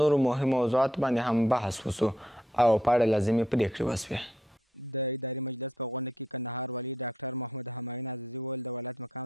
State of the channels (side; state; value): both; normal; correlation 0.74